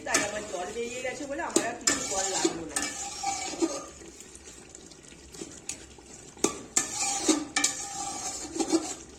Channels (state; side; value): identical; both; correlation 1.00